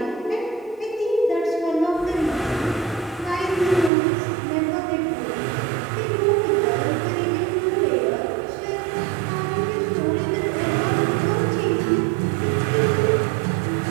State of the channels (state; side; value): drops out; left; at 3.9 s